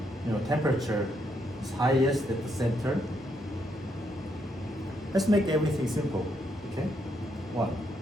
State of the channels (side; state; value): both; normal; correlation 0.76